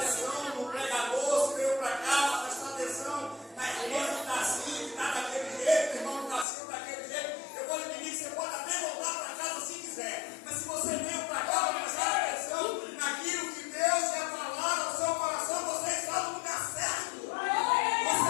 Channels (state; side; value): drops out; right; at 6.5 s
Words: no pregador, se veio para cá, para prestar atenção na irmã que está assim, que está daquele jeito, o irmão que está assim, daquele jeito, eu vou lhe pedir que você pode até voltar para casa se quiser. Mas se você veio para cá para prestar atenção naquilo que Deus quer falar no seu coração, você está no lugar certo.